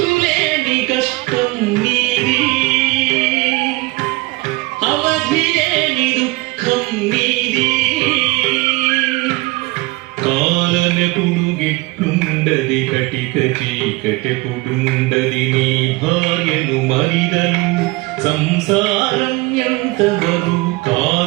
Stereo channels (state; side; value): quieter; left; 23.0 dB